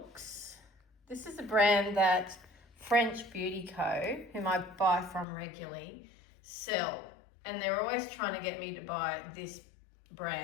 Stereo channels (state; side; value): drops out; right; at 5.2 s